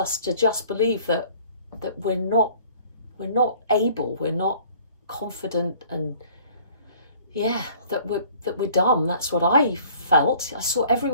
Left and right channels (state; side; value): inverted; both; correlation -0.53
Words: to just believe that we're not able, we're not confident, and that we're dumb. That's what I felt. I saw